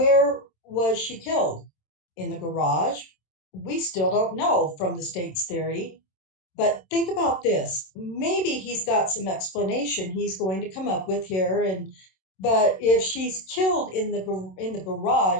was she killed? In the garage? We still don't know from the state's theory. But think about this. Maybe he's got some explanation he's going to come up with here. But if she's killed in the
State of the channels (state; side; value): late; right; 27 ms